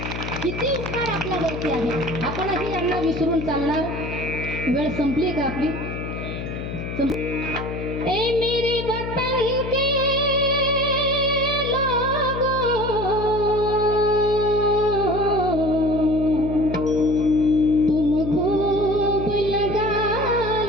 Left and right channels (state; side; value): noise; left; hum, 6 dB below the sound